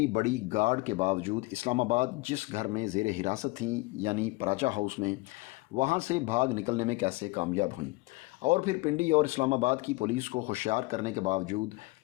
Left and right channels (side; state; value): right; quieter; 23.3 dB